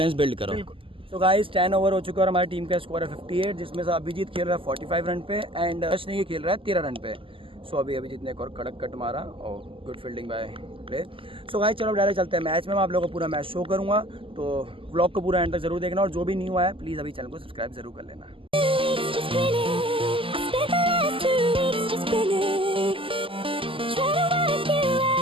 बिल्ड करो। बिल्कुल। तो गाइस 10 ओवर हो चुका है और हमारी टीम का स्कोर है 58, जिसमें से अभिजीत खेल रहा है 45 रन पे एंड यश नहीं खेल रहा है 13 रन पे। सो अभी अभिजीत ने एक और कड़क कट मारा और good fielding bye play. So guys चलो डायरेक्ट चलते हैं मैच में। मैं आप लोगों को पूरा मैच शो करूँगा, तो व्लॉग को पूरा एंड तक जरूर देखना, और जो भी न्यू आया प्लीज़ अभी चैनल को सब्सक्राइब जरूर कर लेना।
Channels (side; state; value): left; late; 0.25 ms